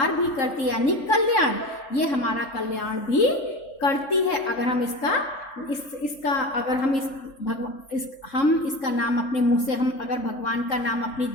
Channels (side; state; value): right; late; 3.6 ms